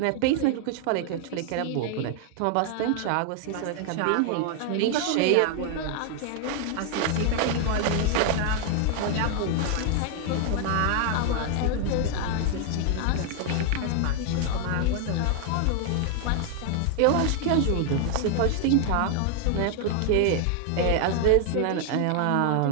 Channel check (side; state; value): both; different; correlation 0.00